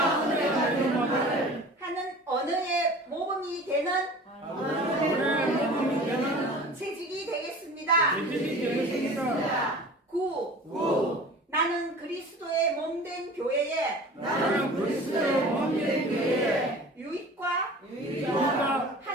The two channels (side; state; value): both; normal; correlation 0.41